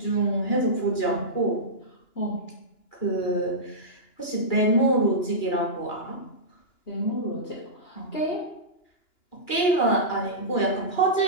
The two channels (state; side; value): late; right; 2.9 ms